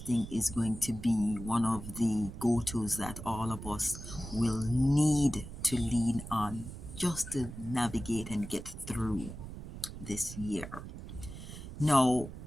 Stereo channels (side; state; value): right; noise; rumble, 11 dB below the sound